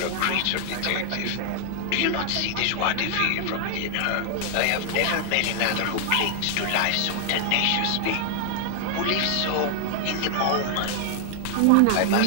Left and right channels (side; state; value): both; different; correlation 0.00